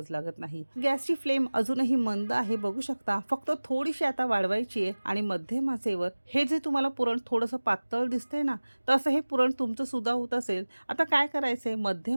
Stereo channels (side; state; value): both; inverted; correlation -1.00